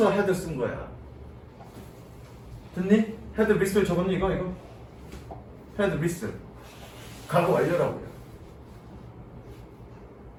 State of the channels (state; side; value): identical; both; correlation 1.00